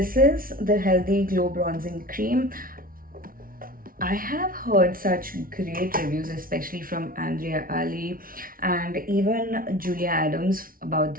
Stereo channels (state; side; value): late; left; 0.42 ms